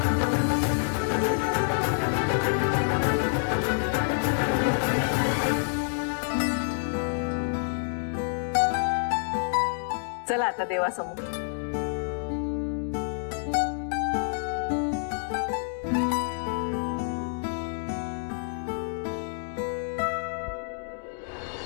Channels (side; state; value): right; silent; digital silence